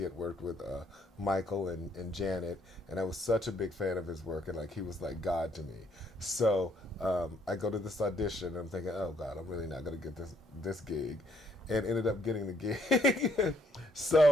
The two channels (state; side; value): normal; both; correlation 0.69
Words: had worked with Michael and Janet, and I was such a big fan of his work, and like he was like God to me. So I go to this audition, and I'm thinking, oh God, I'm really not going to get this gig, and ended up getting the gig.